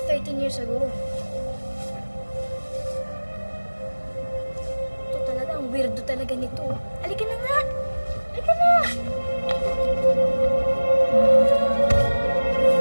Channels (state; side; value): inverted; both; correlation -1.00